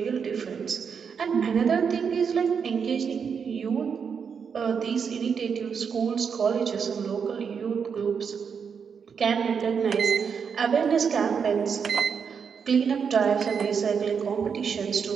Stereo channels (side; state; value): left; quieter; 6.5 dB